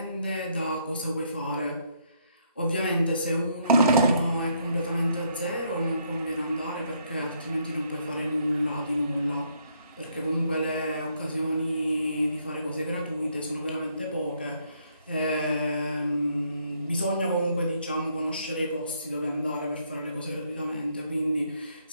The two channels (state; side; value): inverted; both; correlation -0.71